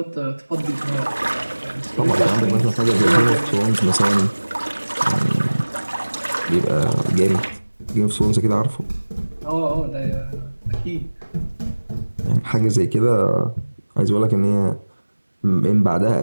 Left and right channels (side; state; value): both; inverted; correlation -1.00